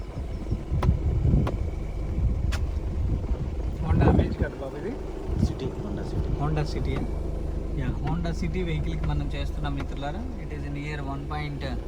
Honda amaze కదా బాబు, ఇది హోండా సిటీ హోండా సిటీ వెహికల్కి మనం చేస్తున్నాం మిత్రులారా. It is in year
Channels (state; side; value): identical; both; correlation 1.00